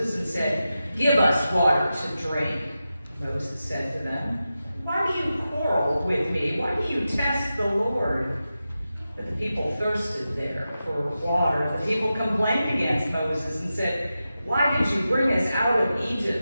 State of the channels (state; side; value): inverted; both; correlation -0.92